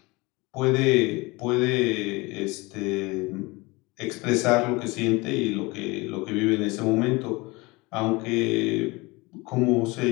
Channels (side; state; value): right; quieter; 24.2 dB